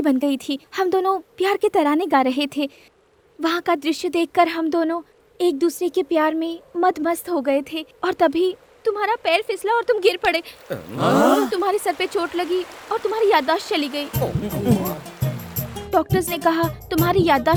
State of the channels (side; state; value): both; identical; correlation 1.00